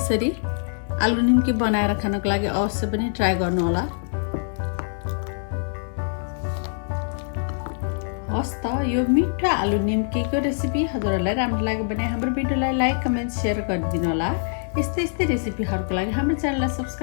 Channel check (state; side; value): silent; right; digital silence